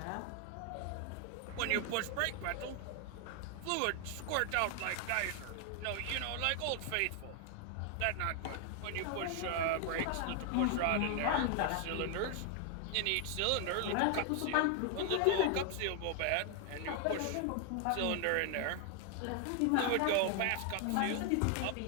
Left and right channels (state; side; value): different; both; correlation 0.00